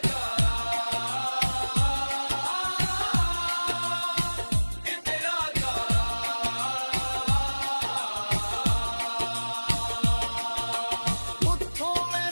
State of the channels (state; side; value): inverted; both; correlation -1.00